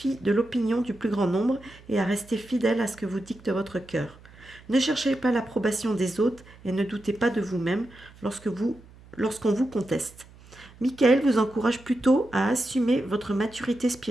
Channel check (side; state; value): right; noise; hum, 23 dB below the sound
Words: de l'opinion du plus grand nombre et à rester fidèle à ce que vous dicte votre cœur. Ne cherchez pas l'approbation des autres et ne doutez pas de vous-même lorsqu'on vous conteste. Michael vous encourage plutôt à assumer votre maturité